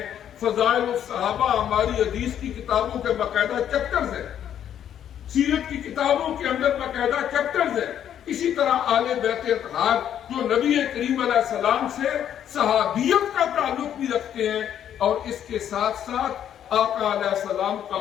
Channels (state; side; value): quieter; right; 9.9 dB